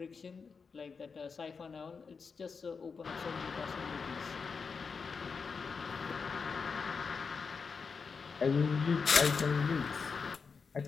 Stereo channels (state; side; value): quieter; right; 5.3 dB